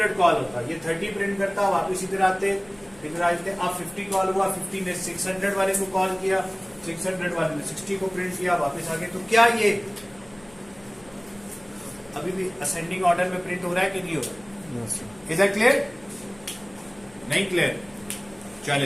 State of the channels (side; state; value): left; noise; hum, 25 dB below the sound